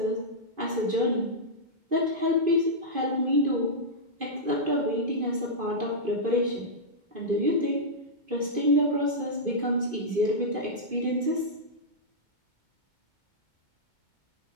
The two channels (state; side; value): late; left; 2.5 ms